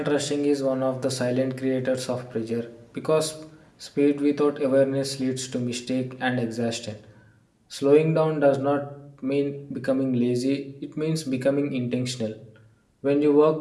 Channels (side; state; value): both; identical; correlation 1.00